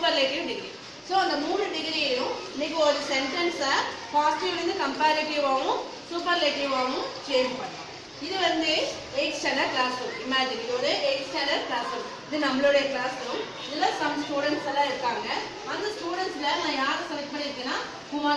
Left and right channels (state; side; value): identical; both; correlation 1.00